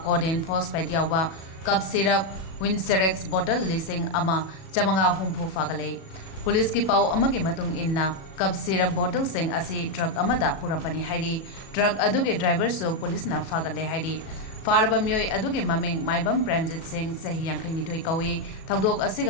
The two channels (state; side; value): late; right; 37 ms